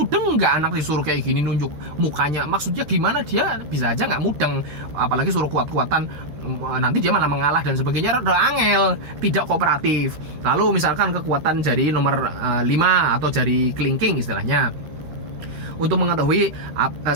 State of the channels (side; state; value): left; late; 13 ms